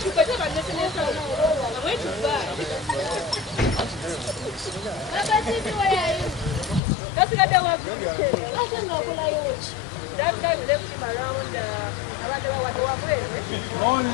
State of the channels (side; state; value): right; drops out; at 6.8 s